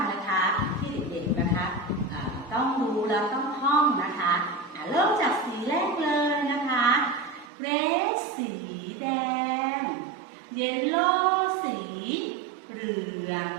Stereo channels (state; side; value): drops out; left; at 7.5 s